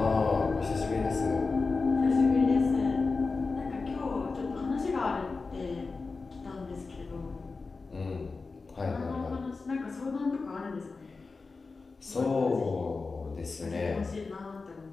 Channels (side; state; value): right; quieter; 4.1 dB